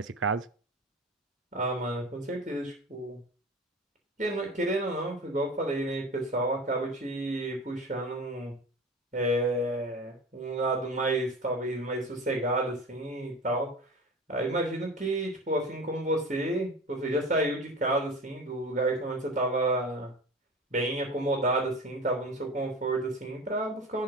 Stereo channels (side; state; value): both; normal; correlation 0.32